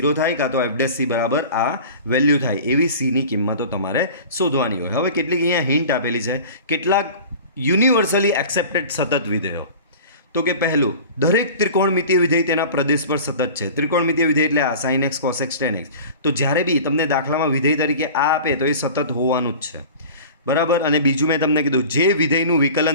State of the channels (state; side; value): inverted; both; correlation -0.39